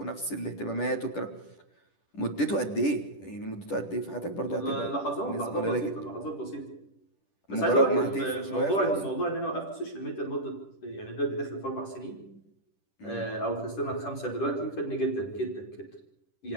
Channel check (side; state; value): right; late; 10 ms